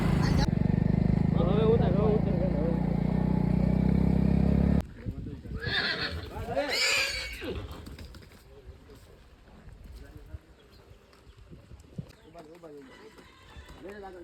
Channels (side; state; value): both; identical; correlation 1.00